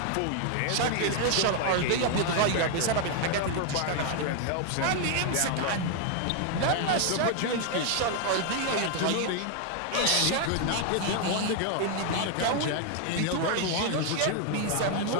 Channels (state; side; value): different; both; correlation 0.00